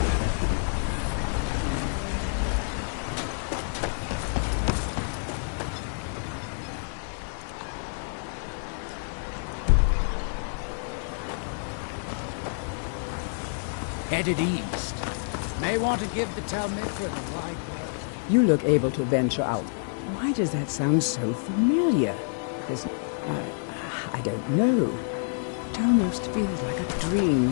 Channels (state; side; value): silent; right; digital silence